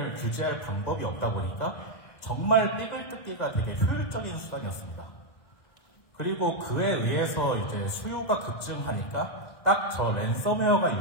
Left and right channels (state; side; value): late; right; 2.0 ms